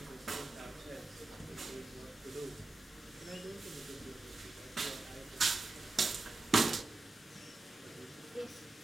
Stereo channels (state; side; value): quieter; left; 3.3 dB